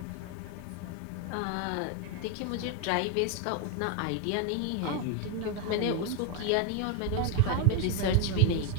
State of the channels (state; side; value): different; both; correlation 0.01